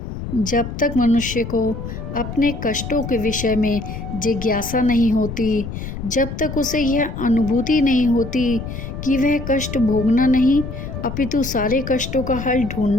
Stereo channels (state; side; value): noise; left; rumble, 8 dB below the sound